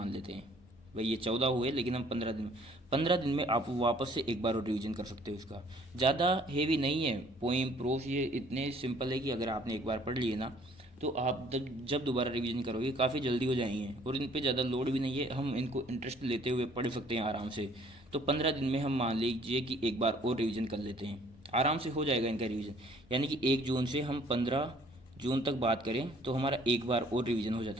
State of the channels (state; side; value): normal; both; correlation 0.58